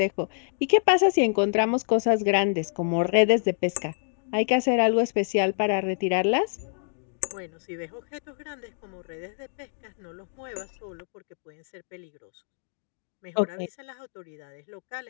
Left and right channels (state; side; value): silent; right; digital silence